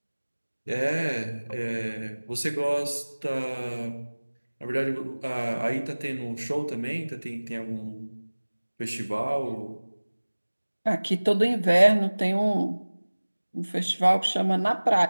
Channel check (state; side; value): inverted; both; correlation -1.00